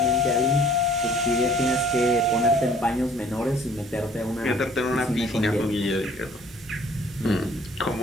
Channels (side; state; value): both; normal; correlation 0.55